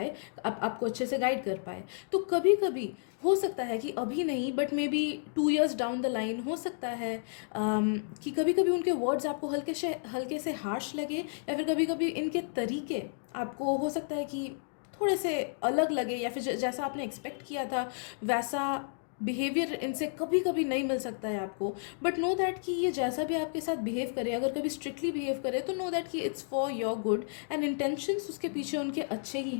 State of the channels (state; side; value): silent; right; digital silence